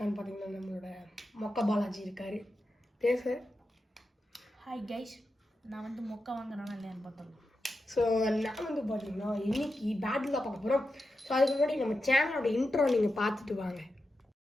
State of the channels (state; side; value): normal; both; correlation 0.89